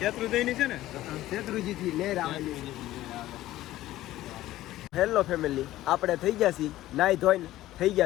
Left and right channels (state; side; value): quieter; right; 15.2 dB